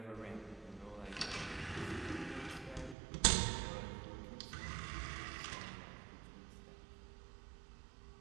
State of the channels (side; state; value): left; drops out; at 3.0 s